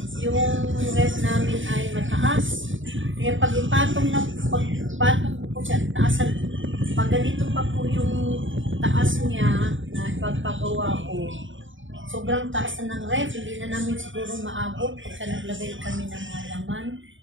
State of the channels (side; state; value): left; late; 0.56 ms